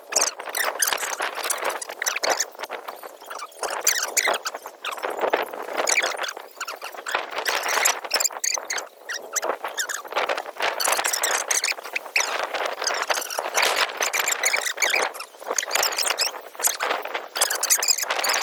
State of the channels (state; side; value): identical; both; correlation 1.00